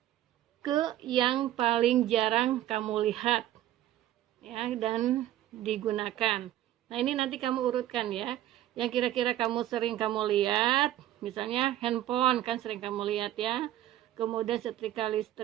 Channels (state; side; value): quieter; left; 13.2 dB